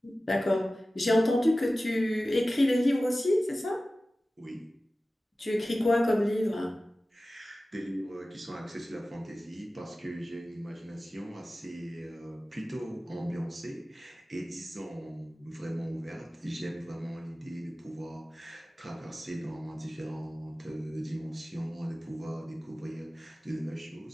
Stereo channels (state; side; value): normal; both; correlation 0.96